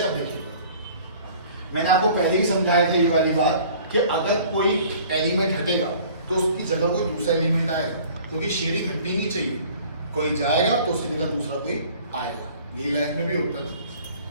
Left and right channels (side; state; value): both; inverted; correlation -0.50